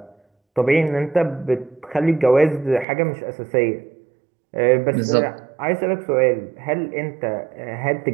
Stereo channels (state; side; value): drops out; left; at 2.9 s